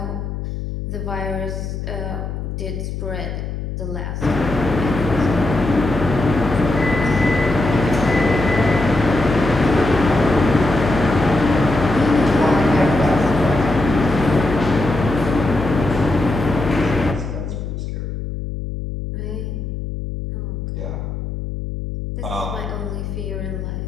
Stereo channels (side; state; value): left; noise; hum, 6 dB below the sound